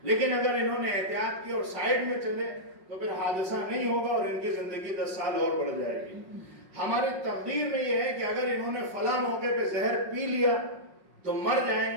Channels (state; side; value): late; left; 5.5 ms